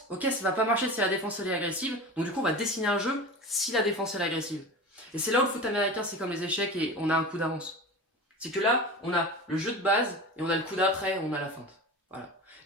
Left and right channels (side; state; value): both; normal; correlation 0.31